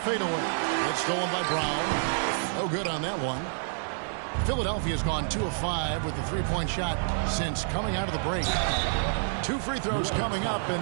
It's stolen by Brown. No good on that one. Philadelphia's gone 2 of 5 with the 3-point shot since coming out of the break. 2 free throws coming up,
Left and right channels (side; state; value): left; silent; 59 dB below the other